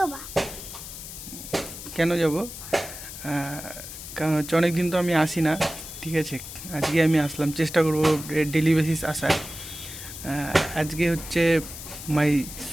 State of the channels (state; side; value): noise; left; hiss, 11 dB below the sound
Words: কেন যাব? কারণ হচ্ছে অনেকদিন তো আমি আসি না, ঠিক আছে। আজকে আমি আসলাম, চেষ্টা করবো ডেলি বেসিস আসার। আজকে হচ্ছে মাই